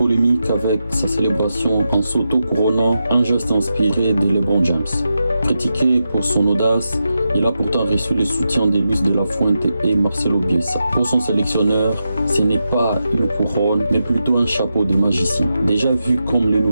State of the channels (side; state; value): both; inverted; correlation -0.88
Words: avec sa célébration en s'auto-couronnant, un geste inspiré de LeBron James. Critiqué pour son audace, il a pourtant reçu le soutien de Luis de la Fuente et Marcelo Bielsa. Pour son sélectionneur, ce n'est pas une couronne, mais plutôt un chapeau de magicien. Déjà vu comme le